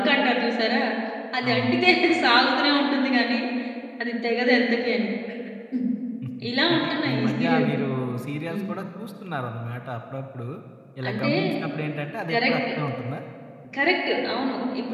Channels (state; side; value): identical; both; correlation 1.00